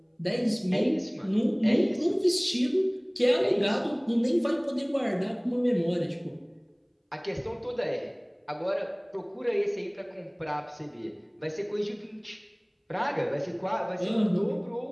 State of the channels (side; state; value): both; identical; correlation 1.00